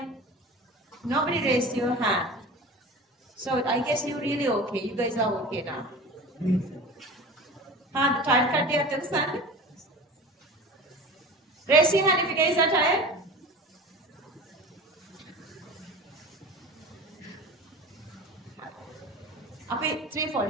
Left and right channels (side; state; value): both; normal; correlation 0.35